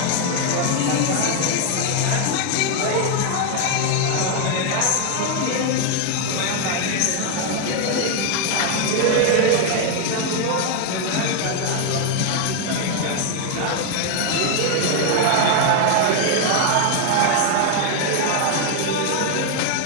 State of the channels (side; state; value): both; different; correlation 0.01